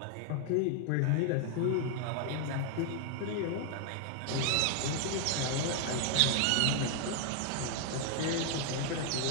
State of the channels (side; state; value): both; different; correlation 0.00